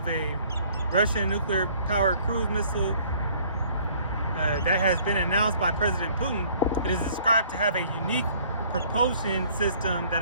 a Russian nuclear-powered cruise missile that has been announced by President Putin. It is described to have a unique propulsion system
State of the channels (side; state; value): both; inverted; correlation -0.58